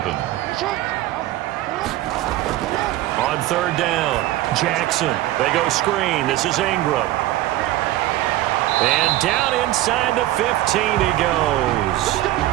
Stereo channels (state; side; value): quieter; left; 15.4 dB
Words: On 3rd down, Jackson. They go screen. This is Ingram. And down inside the 15 he goes.